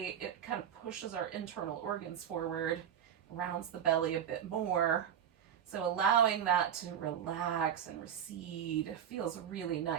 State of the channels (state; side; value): quieter; left; 9.1 dB